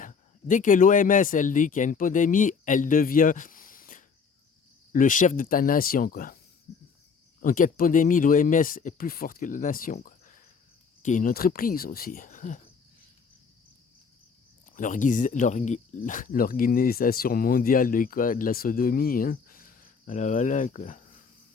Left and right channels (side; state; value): right; quieter; 5.6 dB